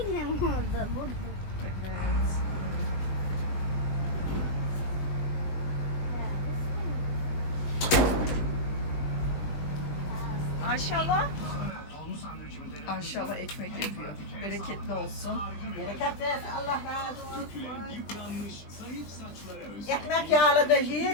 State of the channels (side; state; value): right; late; 20 ms